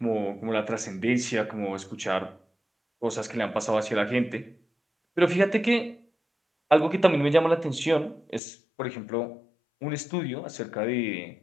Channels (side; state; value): right; drops out; at 8.4 s